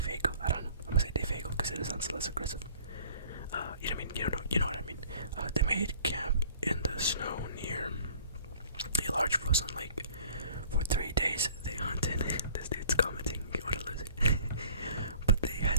I don't know. I'm gonna say Defago because it sounds less aggressive. You know what I mean? You know what I mean. They made camp in the snow near a large frozen lake. For 3 days, they hunted. This dude's commenting. What a loser. But they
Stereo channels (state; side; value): inverted; both; correlation -0.50